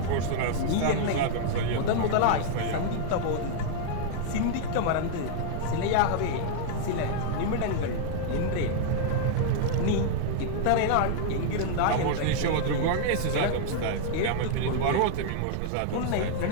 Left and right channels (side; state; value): both; different; correlation -0.01